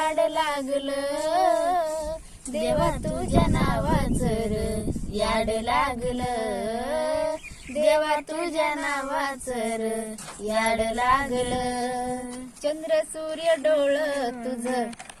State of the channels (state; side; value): identical; both; correlation 1.00